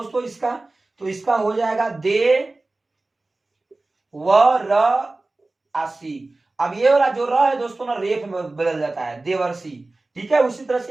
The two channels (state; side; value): quieter; left; 3.1 dB